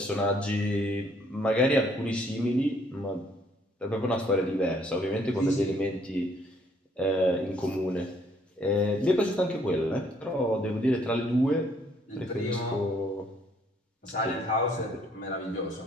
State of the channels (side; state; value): both; normal; correlation 0.65